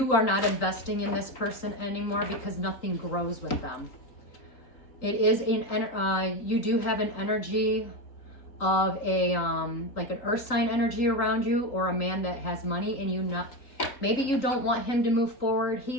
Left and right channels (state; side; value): late; right; 3.8 ms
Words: are not investing in this person anymore because nothing grows with them. It is you do have an energy of a like an earth sign energy around you, or a man that has money, and maybe you don't want him to move forward.